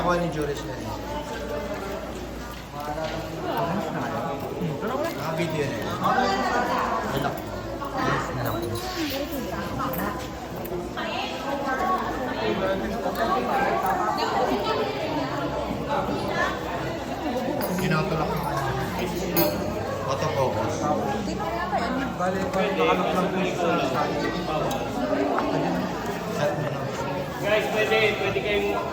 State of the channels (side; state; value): both; identical; correlation 1.00